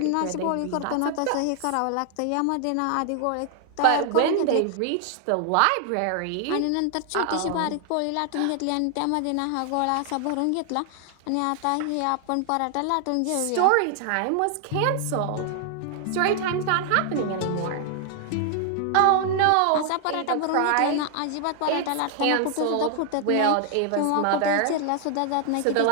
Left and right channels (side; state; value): both; different; correlation 0.00